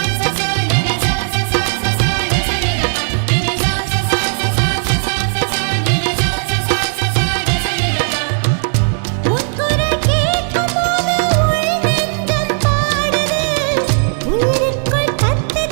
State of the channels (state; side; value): silent; left; 59 dB below the other